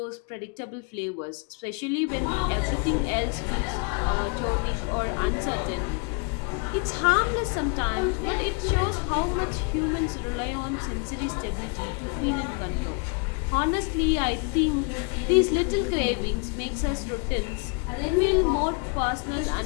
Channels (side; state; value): right; quieter; 34.4 dB